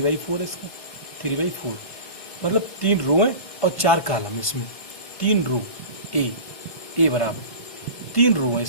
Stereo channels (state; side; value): late; right; 1.5 ms